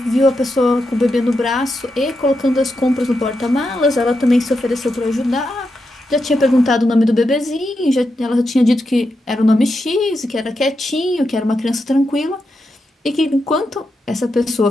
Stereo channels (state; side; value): normal; both; correlation 0.86